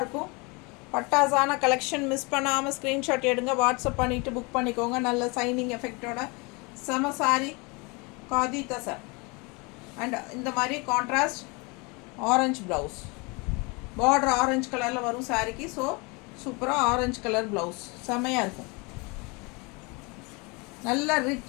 இருக்கும். பட்டாசான கலெக்ஷன். மிஸ் பண்ணாமல் ஸ்க்ரீன்ஷாட் எடுங்க, வாட்ஸ்அப் பண்ணிவிட்டு புக் பண்ணிக்கோங்க. நல்ல சைனிங் எஃபெக்டோட செம சாரி, காதி தசர் அண்ட் இந்த மாதிரி contrast orange blouse, border orange கலரில் வரும் சாரிக்கு. ஸோ சூப்பராக ஆரஞ்சு கலர் ப்ளவுஸ் செமையாக இருக்கும். நல்ல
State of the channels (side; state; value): right; quieter; 28.6 dB